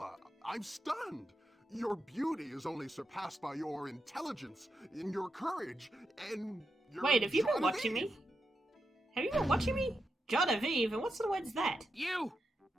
I'm stunned. Your beauty is only surpassed by your intelligence, and your courage, and your... Wait, have you been watching me? Have you been watching me? Genevieve, and what sort of word's that? You!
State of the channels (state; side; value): normal; both; correlation 0.86